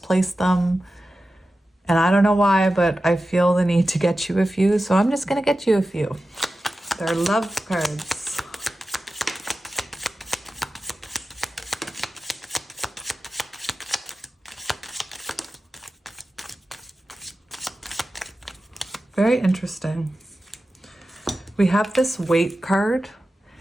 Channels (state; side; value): normal; both; correlation 0.93